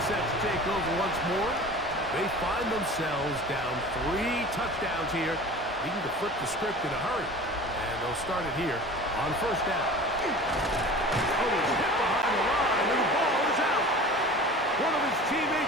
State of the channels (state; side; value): normal; both; correlation 0.39